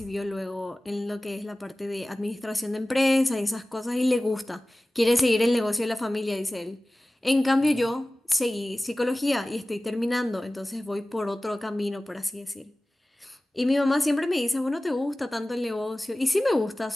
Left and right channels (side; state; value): both; normal; correlation 0.97